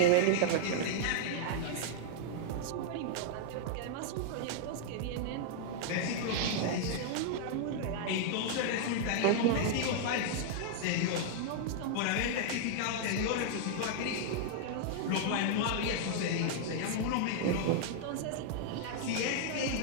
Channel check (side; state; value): both; different; correlation -0.01